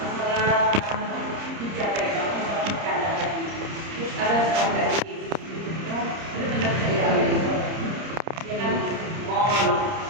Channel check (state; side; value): late; left; 30 ms